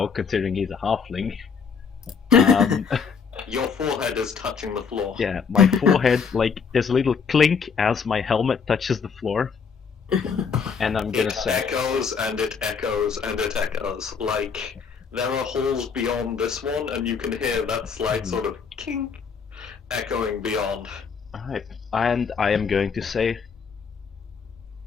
considering he's a halfling. Your forehead is touching the floor. Yeah, my forehead, like, there's a little clink as my helmet touches the floor. And I'm gonna It say... echoes and it echoes and it echoes. Like, there are halls beyond this one, and you can hear that slight sort of kink echoing beyond. Alright, and I am going to say...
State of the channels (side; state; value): right; quieter; 5.9 dB